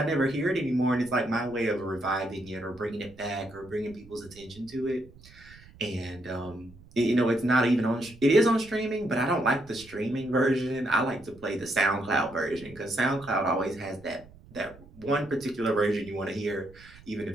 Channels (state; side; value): noise; right; rumble, 22 dB below the sound